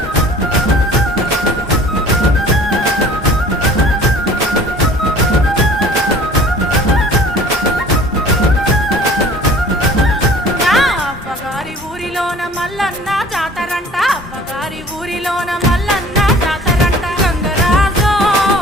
అవ్వగారి ఊరిలోన మల్లన్న జాతరంట అవ్వగారి ఊరిలోన మల్లన్న జాతరంట గంగరాజో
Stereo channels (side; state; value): both; normal; correlation 0.48